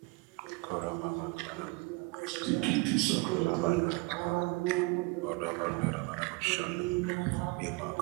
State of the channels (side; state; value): left; quieter; 26.4 dB